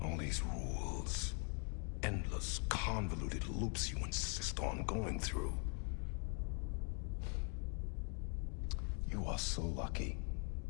All these rules, endless, convoluted loops you insist on going through. You are so lucky,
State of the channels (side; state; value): right; quieter; 39.6 dB